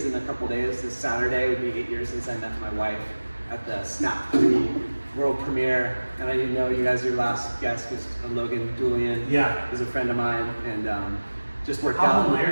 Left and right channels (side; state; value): both; inverted; correlation -1.00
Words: in a couple days. This Saturday would be 8 years since I met my wife at the Snap 3 world premiere. And I didn't know you guys, your last guest was Logan Julian. Yeah. He's a friend of mine, and just worked How out.